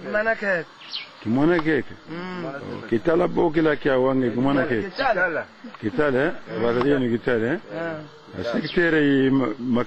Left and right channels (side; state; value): both; identical; correlation 1.00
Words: Mana keke. Kimona keke. Kitala bokila kia wange kimona keke. Kitala wala ni kitala sekretari